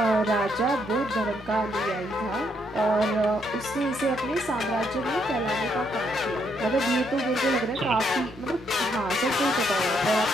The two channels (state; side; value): normal; both; correlation 0.74